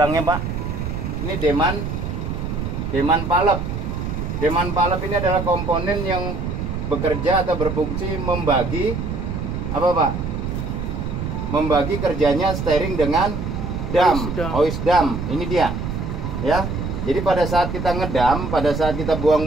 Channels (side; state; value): right; noise; rumble, 4 dB below the sound